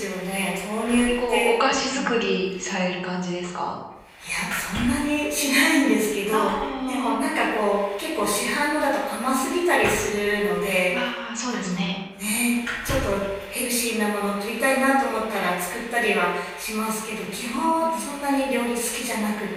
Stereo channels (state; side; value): identical; both; correlation 1.00